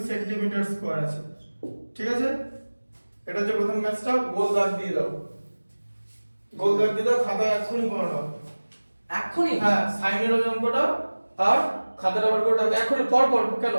সেন্টিমিটার স্কয়ার আছে, ঠিক আছে? এটা হচ্ছে প্রথম ম্যাথটা। গোল দাগ দিয়ে দাও, গোল দাগ দিয়ে দাও, খাতা এক্ষুনি করে নাও এখনি? হ্যাঁ সাইনের ওই অঙ্কটা আর খাতাটা বার করে দাও এক্ষুনি, পর পর। কেন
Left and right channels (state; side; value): inverted; both; correlation -1.00